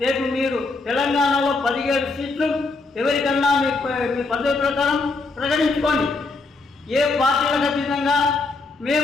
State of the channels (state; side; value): quieter; right; 3.7 dB